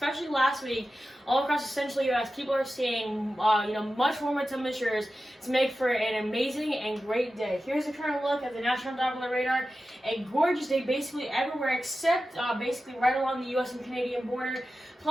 last week, all across the central U.S. People are seeing, much warmer temperatures to make for an amazing and great day. Here's a current look at the National Doppler Radar. A gorgeous day basically everywhere except basically right along the U.S. and Canadian border.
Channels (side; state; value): both; normal; correlation 0.93